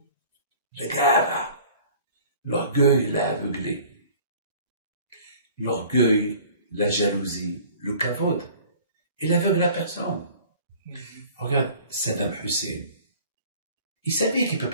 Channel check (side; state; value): both; inverted; correlation -0.48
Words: Le gars, l'orgueil l'a aveuglé. L'orgueil, la jalousie, le kavod, il aveugle la personne. Regarde Saddam Hussein. Il savait qu'il ne peut